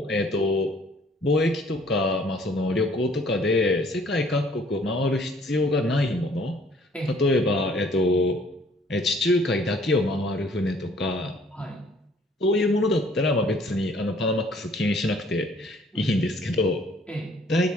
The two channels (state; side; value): normal; both; correlation 0.59